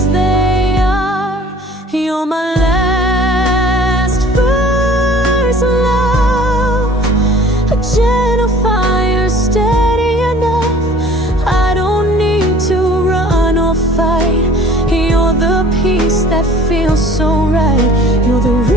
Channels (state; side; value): normal; both; correlation 0.50